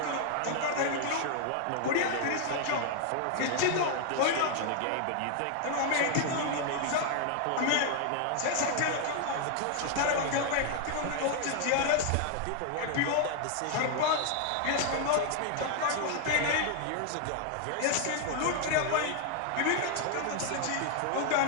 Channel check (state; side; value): different; both; correlation 0.00